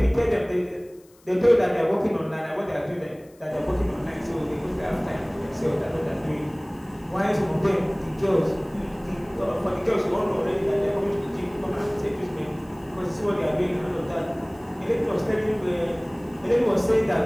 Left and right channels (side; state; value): left; noise; hiss, 30 dB below the sound